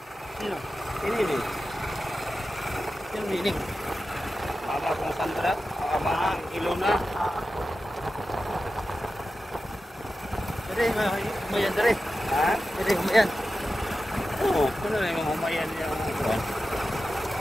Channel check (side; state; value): both; normal; correlation 0.92